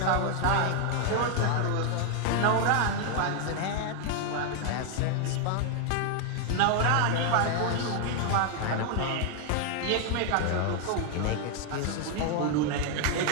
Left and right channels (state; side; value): different; both; correlation 0.00